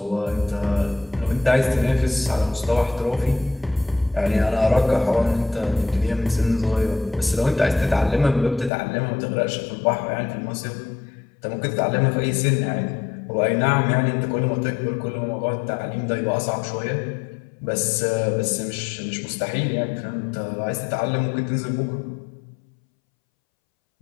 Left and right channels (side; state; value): right; drops out; at 8.7 s